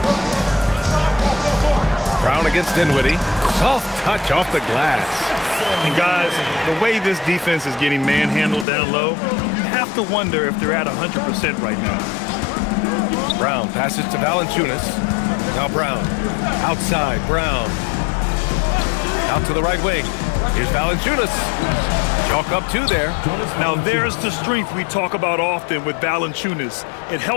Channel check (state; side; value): drops out; right; at 8.7 s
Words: Brown against Dinwiddie. Soft touch off the glass. And guys, the way this defense is getting manhandled down low, you have to wonder if they're at 100% right now. Brown passes to Valanciunas. Now Brown. Outside, Brown. Out to the right wing. Here's Valanciunas. Chalk up 2 there. Now there's the strength we talk about often with Valanciunas. It